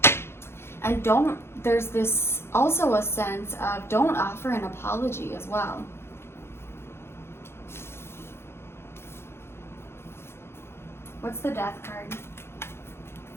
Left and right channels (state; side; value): late; right; 0.12 ms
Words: And there's this also a sense of don't offer an apology as well. What's the Death card?